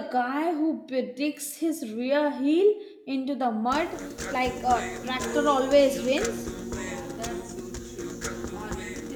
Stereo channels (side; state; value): both; identical; correlation 1.00